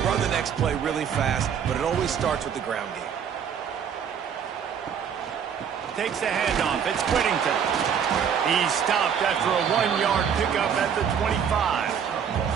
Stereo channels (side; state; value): left; quieter; 7.7 dB